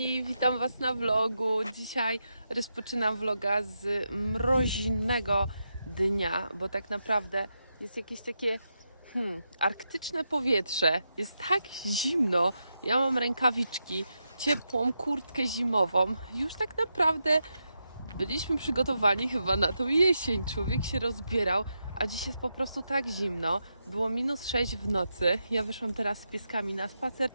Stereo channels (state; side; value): inverted; both; correlation -0.86